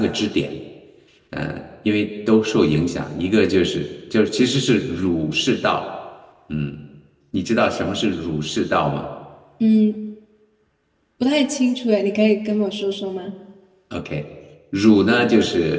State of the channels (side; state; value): both; identical; correlation 1.00